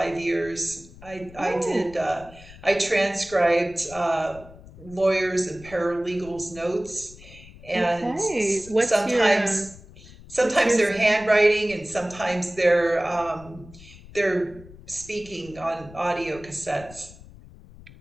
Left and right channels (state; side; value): noise; left; rumble, 20 dB below the sound